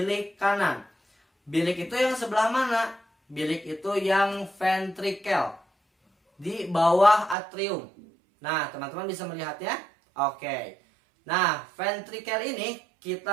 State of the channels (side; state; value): left; drops out; at 7.4 s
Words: kanan. Bilik itu yang sebelah mana? Bilik itu yang ventrikel. Di bawah atrium. Nah, teman-teman bisa melihatnya? Oke. Nah, ventrikel ini